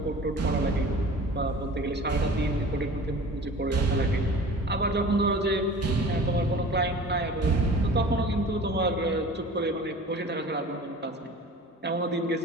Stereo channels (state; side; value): normal; both; correlation 0.42